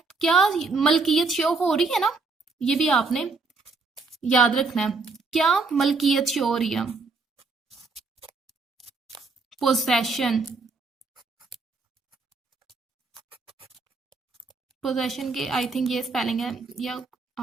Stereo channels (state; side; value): quieter; left; 4.0 dB